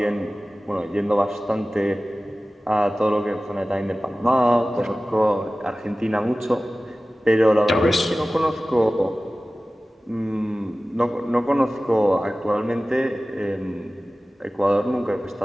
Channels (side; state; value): both; normal; correlation 0.97